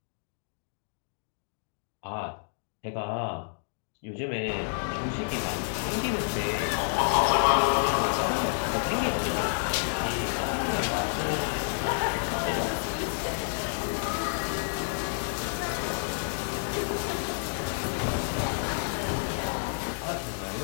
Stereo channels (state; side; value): silent; right; digital silence